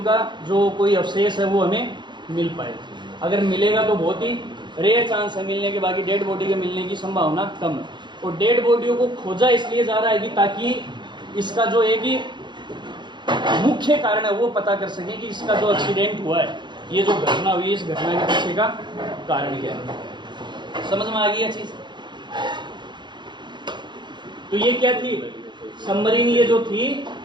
का जो कोई अवशेष है वो हमें मिल पाए। अगर मिलेगा तो बहुत ही रेयर चांस है मिलने के, बाकी डेड बॉडी के मिलने की संभावना कम है। और डेड बॉडियों को खोजा इसलिए जा रहा है कि ताकि इसका जो है कि मुख्य कारण है वो पता कर सके कि इसका जो एक्सीडेंट हुआ है, ये जो घटना हुई है, इस घटना के पीछे का कारण क्या है। समझ में आ गई है चीज। तो ये क्या थी, सबमरीन ये जो थी।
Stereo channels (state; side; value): late; left; 0.22 ms